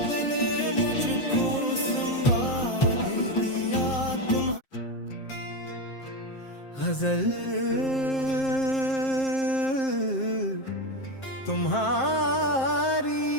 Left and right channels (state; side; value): late; right; 7.6 ms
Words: ने मुझको संवाद दिया। तुम गजल तुम्हारी